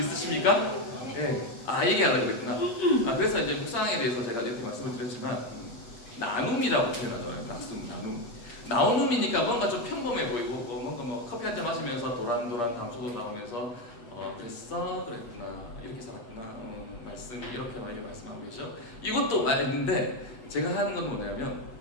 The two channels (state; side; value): late; right; 8.5 ms